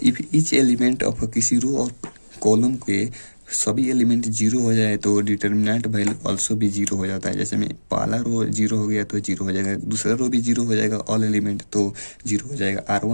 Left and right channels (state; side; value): inverted; both; correlation -1.00